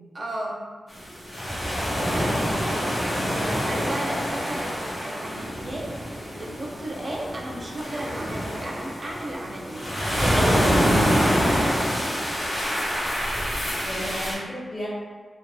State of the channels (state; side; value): normal; both; correlation 0.92